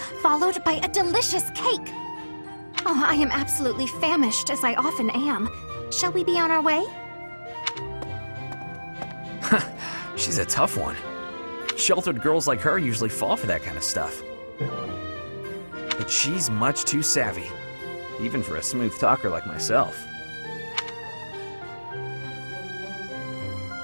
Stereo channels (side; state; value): both; inverted; correlation -1.00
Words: followed by a delicious cake. Oh, I am absolutely famished, as I often am. Shall we be on our way? She's a tough one. Sheltered girls like her usually fall for that kind of stuff. But she's much too savvy, even for a smooth talker like myself.